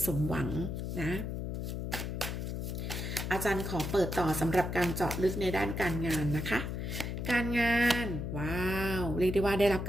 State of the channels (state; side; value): noise; left; hum, 3 dB below the sound